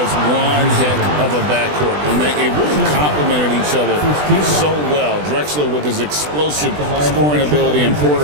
one heck of a backcourt. And they really complemented each other so well. Drexler with his explosive scoring ability and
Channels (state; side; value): late; left; 20 ms